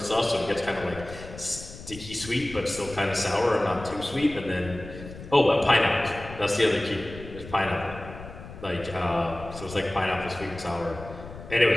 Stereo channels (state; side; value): noise; left; rumble, 14 dB below the sound